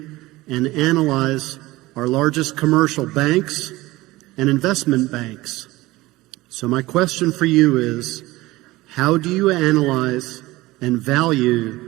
and analyze our largest commercial banks and investment banks. So my question for you is, how do you analyze and value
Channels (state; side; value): quieter; left; 19.2 dB